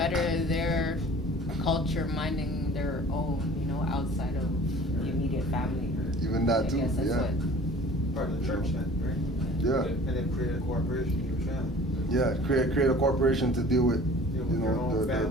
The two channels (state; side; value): normal; both; correlation 0.47